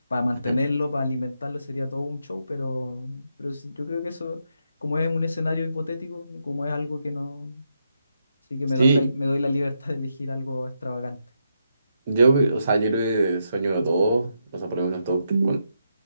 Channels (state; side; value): inverted; both; correlation -0.82